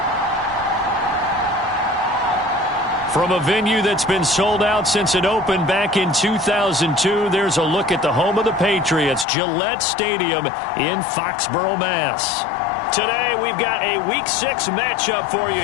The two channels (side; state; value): right; drops out; at 9.2 s